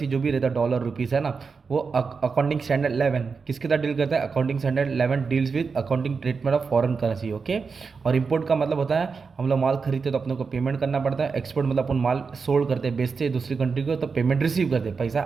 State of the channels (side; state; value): left; quieter; 5.1 dB